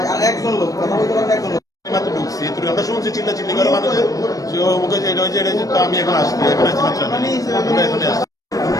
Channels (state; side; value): late; right; 0.17 ms